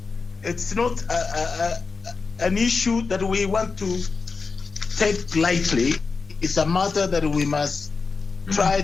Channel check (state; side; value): quieter; right; 4.6 dB